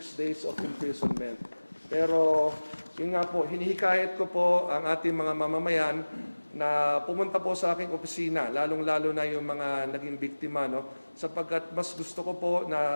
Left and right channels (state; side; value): inverted; both; correlation -1.00